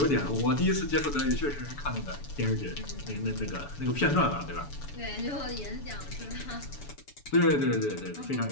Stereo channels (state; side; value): late; right; 7.0 ms